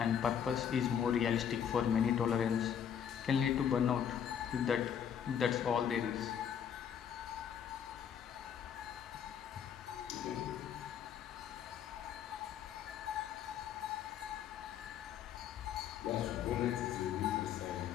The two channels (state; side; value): quieter; right; 8.5 dB